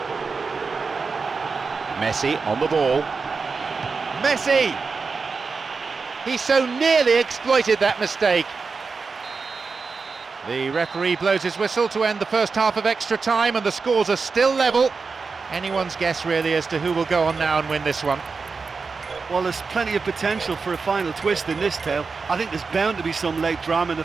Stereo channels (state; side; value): quieter; left; 4.7 dB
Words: Messi on the ball. Messi! He so nearly exploited that mistake. The referee blows his whistle to end the first half of extra time, and the scores are still level. Anyone's guess really as to who will go on now and win this one. Well, there's plenty of potential for a final twist in this tale. I think there's bound to be some late drama in the